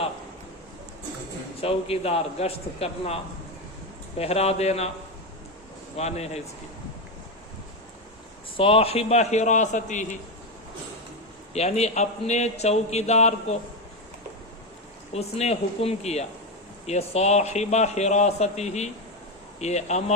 چوکیدار، گشت کرنا، پہرا دینا معنی ہے اس کی۔ صاحب حراستہ یعنی اپنے چوکیدار کو اس نے حکم کیا۔ یہ صاحب حراستہ یہ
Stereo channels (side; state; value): both; normal; correlation 0.11